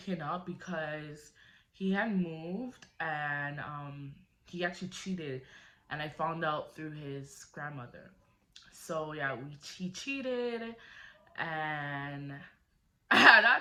up because he had moved, and he actually cheated, and I found out through his grandmother. So yeah, he cheated, and at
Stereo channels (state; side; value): identical; both; correlation 1.00